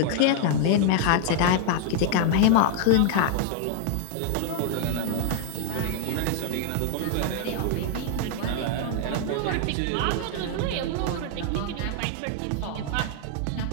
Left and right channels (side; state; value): both; different; correlation 0.00